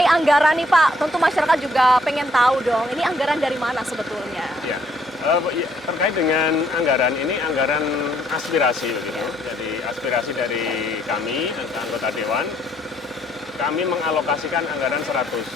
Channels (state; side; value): normal; both; correlation 0.68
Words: anggaran nih Pak, tentu masyarakat juga pengen tahu dong, ini anggaran dari mana sebetulnya? Ya. Terkait dengan anggaran ini anggaran aspirasi begitu. Jadi aspirasi dari kami anggota dewan, kami mengalokasikan anggaran 100